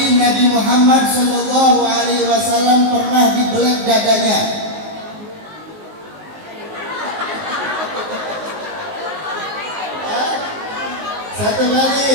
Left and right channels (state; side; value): late; left; 19 ms